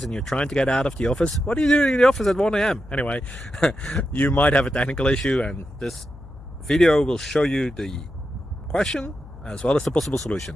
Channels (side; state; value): left; noise; hum, 17 dB below the sound